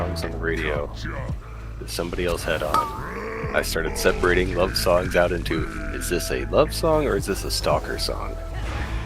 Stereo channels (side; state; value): both; identical; correlation 1.00